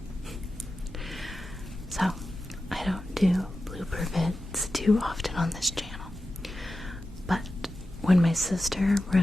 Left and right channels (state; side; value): normal; both; correlation 0.93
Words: So, I don't do blooper vids too often on this channel, but when my sister